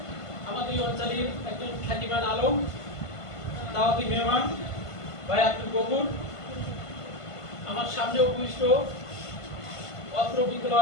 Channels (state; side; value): late; right; 1.5 ms